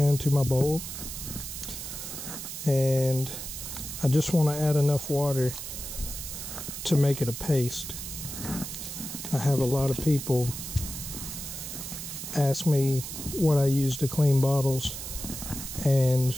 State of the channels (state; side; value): noise; right; hiss, 8 dB below the sound